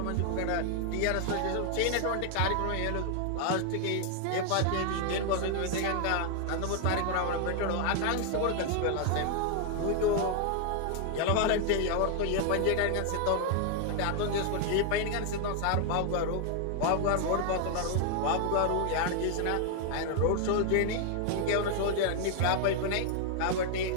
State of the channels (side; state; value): both; different; correlation 0.00